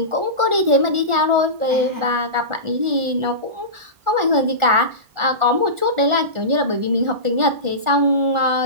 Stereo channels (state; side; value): late; left; 1.4 ms